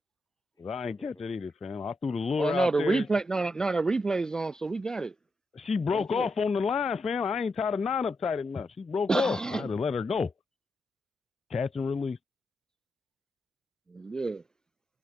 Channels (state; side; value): normal; both; correlation 0.84